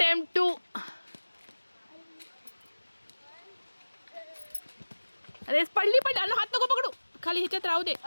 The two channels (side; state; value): both; inverted; correlation -1.00